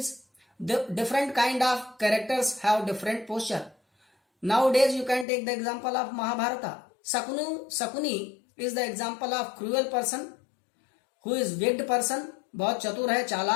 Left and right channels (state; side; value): drops out; right; at 5.2 s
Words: The different kind of characters have different posture. Nowadays, you can take the example of Mahabharata. Sakuni is the example of cruel person who is wicked person. बहुत चतुर है,